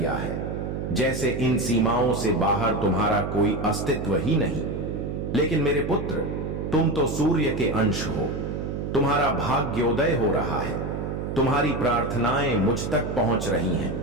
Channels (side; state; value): right; noise; hum, 4 dB below the sound